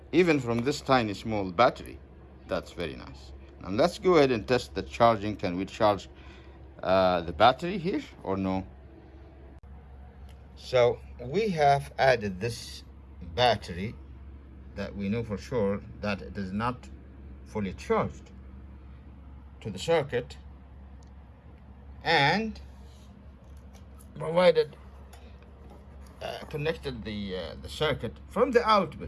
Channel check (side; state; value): both; identical; correlation 1.00